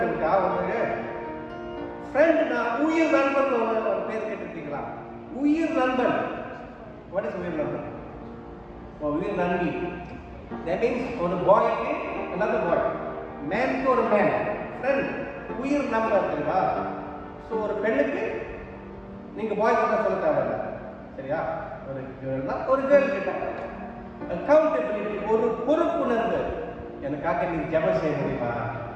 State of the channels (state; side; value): identical; both; correlation 1.00